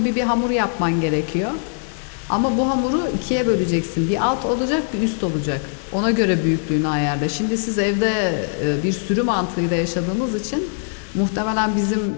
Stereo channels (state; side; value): silent; right; digital silence